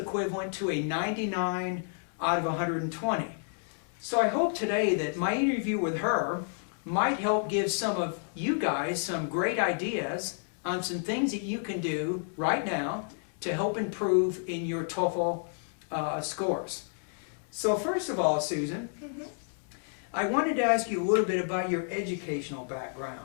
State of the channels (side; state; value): right; silent; 58 dB below the other